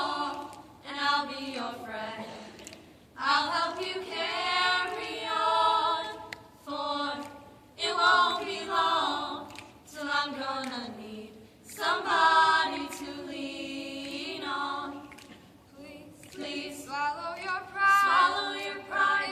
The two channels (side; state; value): both; identical; correlation 1.00